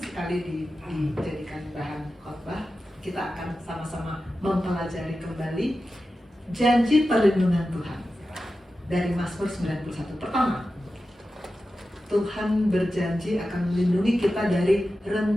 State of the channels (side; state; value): both; normal; correlation 0.93